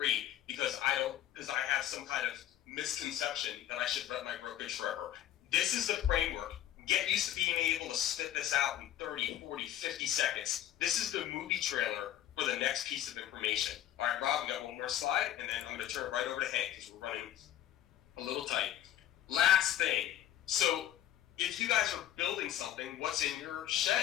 because I have some kind of misconception that I should run my brokerage forever. This is the framework. Get used to being able to spit this out in 30, 40, 50 seconds. This is the movie trailer for the next piece of information. All right, Rob, we got one more slide, and then I'm going to turn it right over to Hank because we're running a little tight. Last thing. So if you guys are building something, what's in your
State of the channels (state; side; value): quieter; right; 12.1 dB